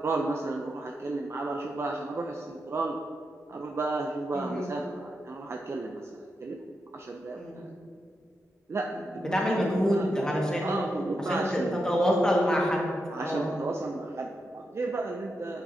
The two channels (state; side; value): normal; both; correlation 0.86